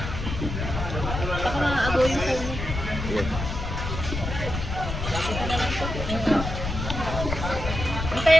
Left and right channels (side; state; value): left; noise; rumble, 5 dB below the sound